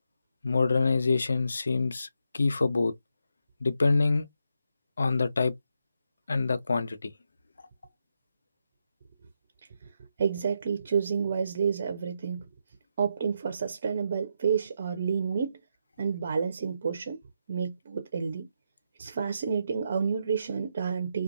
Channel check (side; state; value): both; inverted; correlation -0.81